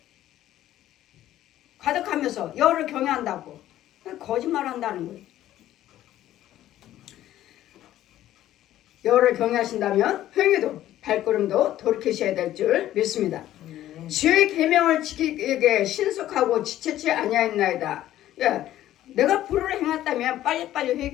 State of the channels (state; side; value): quieter; right; 13.3 dB